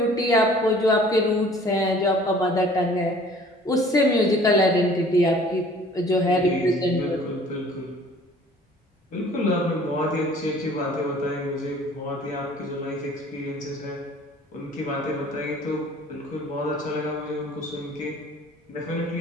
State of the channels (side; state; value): both; normal; correlation 0.51